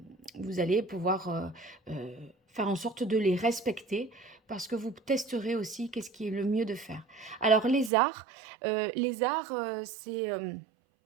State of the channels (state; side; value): drops out; left; at 7.9 s